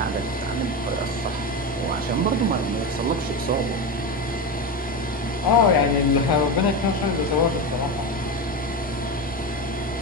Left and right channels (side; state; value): both; normal; correlation 0.18